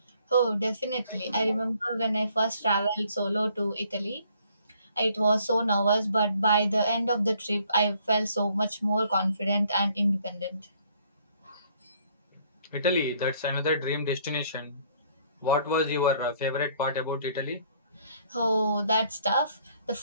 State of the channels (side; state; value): both; inverted; correlation -0.63